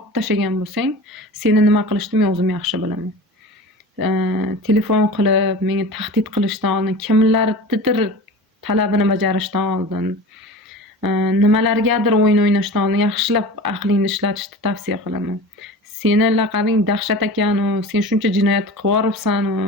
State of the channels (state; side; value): normal; both; correlation 0.35